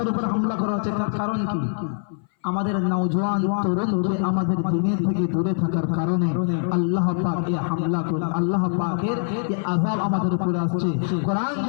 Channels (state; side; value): silent; right; 59 dB below the other